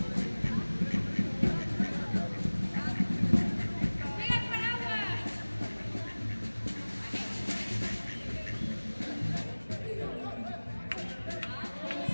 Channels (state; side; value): inverted; both; correlation -1.00